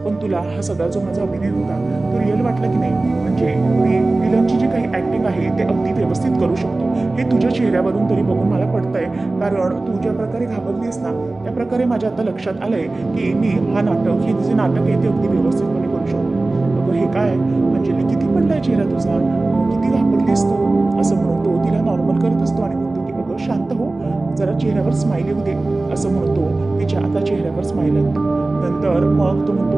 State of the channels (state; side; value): quieter; left; 3.1 dB